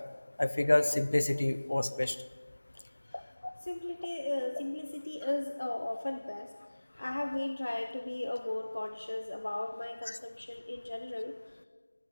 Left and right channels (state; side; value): inverted; both; correlation -1.00